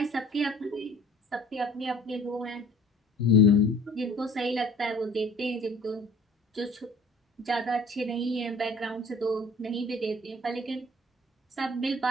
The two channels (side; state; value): both; normal; correlation 0.51